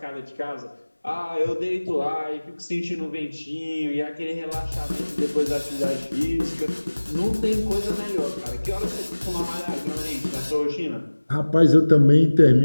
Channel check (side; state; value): both; inverted; correlation -1.00